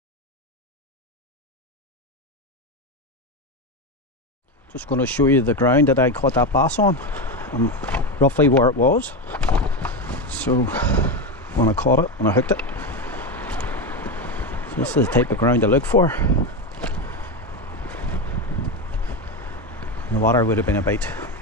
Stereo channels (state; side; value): normal; both; correlation 0.14